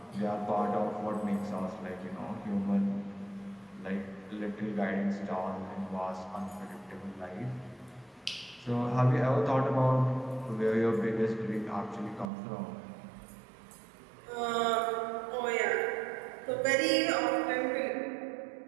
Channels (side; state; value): left; drops out; at 12.3 s